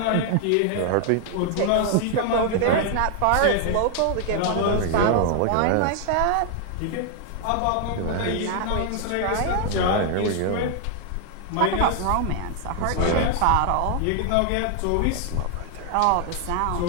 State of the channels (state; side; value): different; both; correlation 0.00